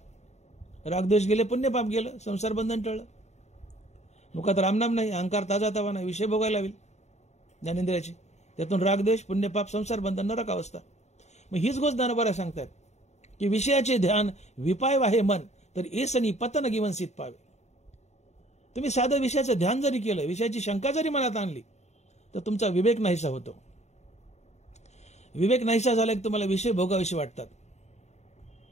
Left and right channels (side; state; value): right; late; 0.32 ms